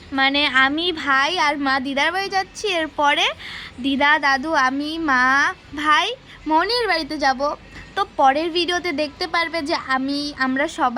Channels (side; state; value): both; identical; correlation 1.00